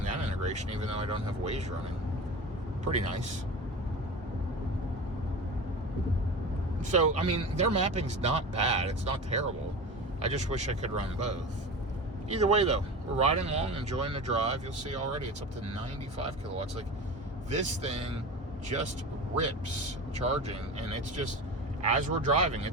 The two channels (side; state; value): both; normal; correlation 0.30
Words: that integration, even though I don't have Waze running. Pretty nice. So, I mean, their mapping's not bad. It's not terrible. I just wish I could run both. Either way, though, we're riding along, enjoying the drive. You'll see already it's up to 95 kilowatts. Like, this thing just rips charging, and it's just, as we're driving,